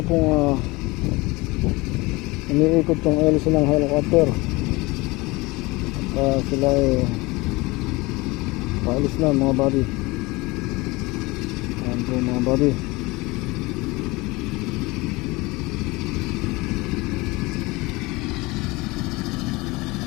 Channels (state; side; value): quieter; right; 23.0 dB